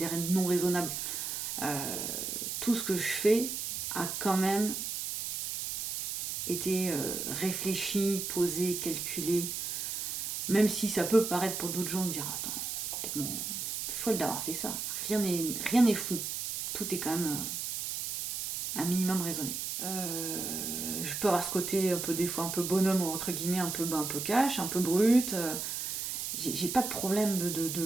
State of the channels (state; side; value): noise; right; hiss, 3 dB below the sound